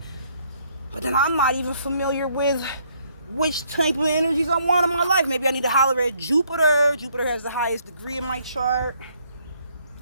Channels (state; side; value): inverted; both; correlation -0.68